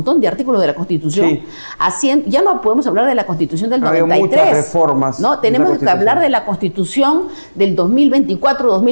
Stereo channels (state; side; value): inverted; both; correlation -1.00